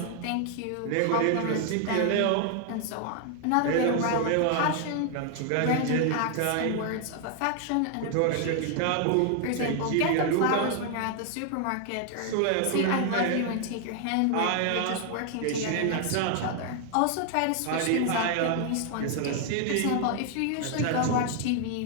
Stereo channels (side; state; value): both; different; correlation 0.00